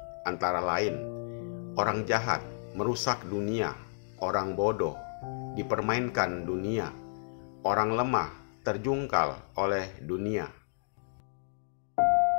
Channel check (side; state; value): right; silent; digital silence